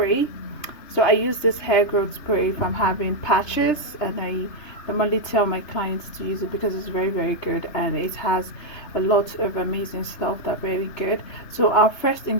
So I use this hair growth spray if I'm having patches, and I normally tell my clients to use it because it's very good, and it has a lot of amazing stuff that are very good. So our first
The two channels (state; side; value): late; right; 3.3 ms